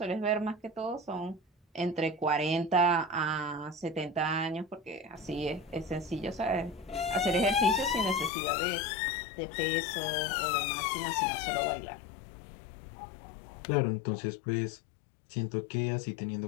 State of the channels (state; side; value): drops out; right; at 8.3 s